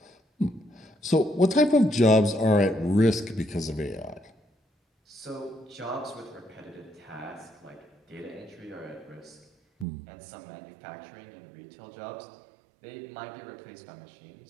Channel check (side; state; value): left; drops out; at 9.9 s